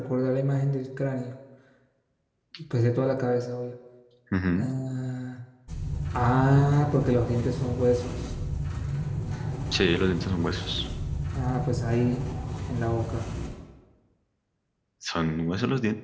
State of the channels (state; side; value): identical; both; correlation 1.00